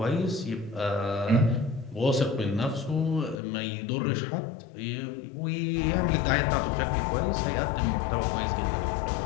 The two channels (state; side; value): drops out; right; at 3.4 s